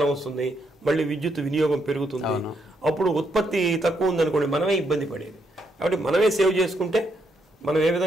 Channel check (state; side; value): normal; both; correlation 0.77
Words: వస్తుంది, మళ్ళీ విద్యుత్ వినియోగం పెరుగుతుంది, అప్పుడు ఉత్పత్తి తక్కువ ఉందనుకోండి మనమే ఇబ్బంది పడేది. కాబట్టి మనమే సేవ్ చేసుకుంటే మనం ఏ